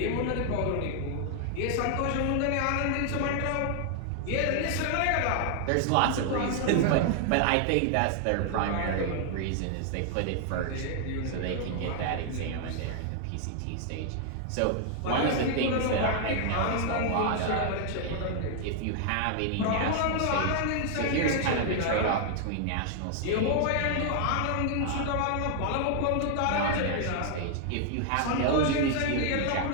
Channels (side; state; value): both; different; correlation 0.00